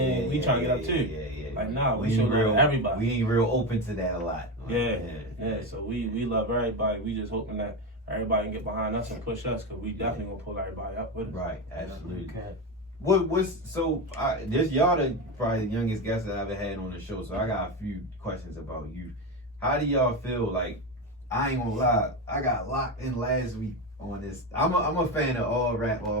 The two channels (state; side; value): normal; both; correlation 0.16